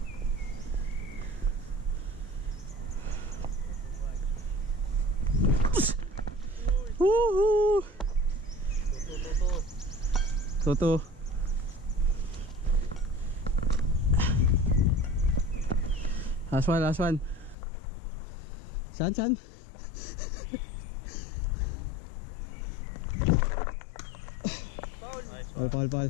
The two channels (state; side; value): drops out; right; at 17.6 s